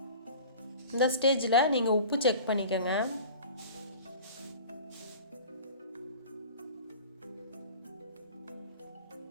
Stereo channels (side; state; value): both; inverted; correlation -0.41